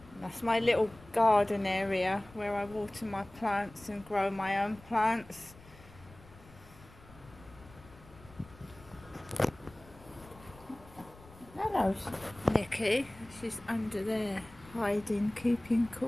That's my little garden area where I water my plants and grow my own plants. Hello, Nikki. She's under there, hiding, keeping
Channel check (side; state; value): left; noise; rumble, 22 dB below the sound